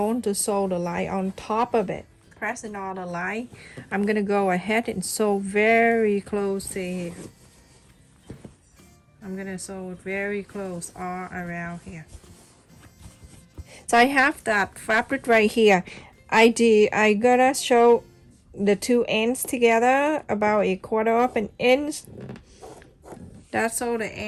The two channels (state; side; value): identical; both; correlation 1.00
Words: to sew the line on top of it. Pressing on the line, I'm gonna go ahead and sew very close to here. I'm gonna sew it very close all around here. So I have that fabric right here. I gotta show the two ends together about 1/4 of an inch. That's all the